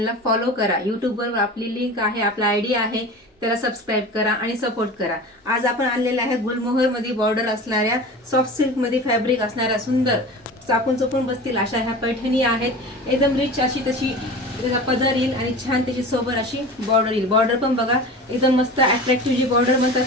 फॉलो करा. यूट्यूबवर आपली लिंक आहे, आपला आय डी आहे, त्याला सबस्क्राईब करा आणि सपोर्ट करा. आज आपण आणलेला आहे गुलमोहरमध्ये बॉर्डर असणाऱ्या सॉफ्ट सिल्कमध्ये फॅब्रिक असणाऱ्या सुंदर चापून चुपून बसतील अशा ह्या पैठणी आहेत. एकदम रिच अशी तशी त्याचा पदर येईल आणि छान त्याची सोबर अशी बॉर्डर येईल. बॉर्डर पण बघा एकदम मस्त अट्रॅक्टिव्ह. जी बॉर्डर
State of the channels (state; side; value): normal; both; correlation 0.34